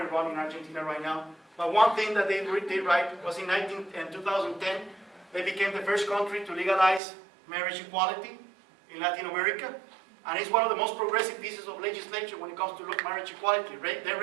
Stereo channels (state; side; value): drops out; left; at 7.0 s